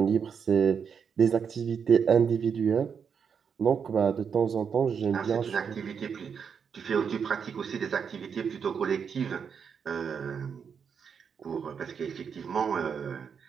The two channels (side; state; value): left; quieter; 6.7 dB